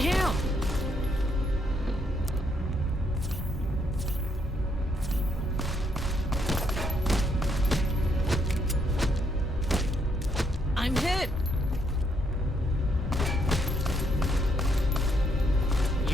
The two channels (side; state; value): both; normal; correlation 0.74